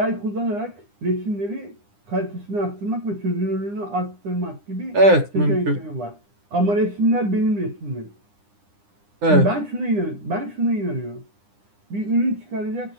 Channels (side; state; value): left; late; 9.9 ms